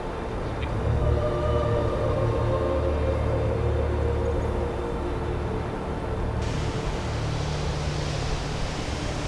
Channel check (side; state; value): both; identical; correlation 1.00